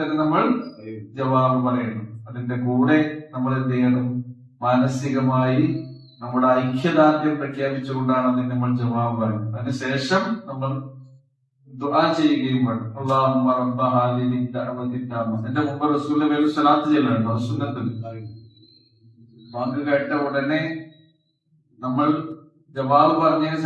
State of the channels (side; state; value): both; identical; correlation 1.00